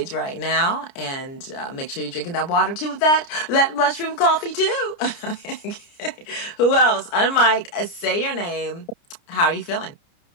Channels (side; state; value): right; late; 29 ms